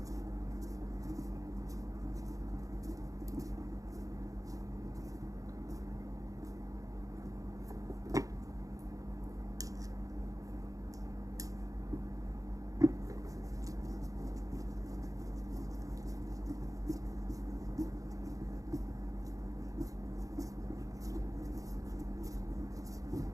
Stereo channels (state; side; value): late; left; 0.17 ms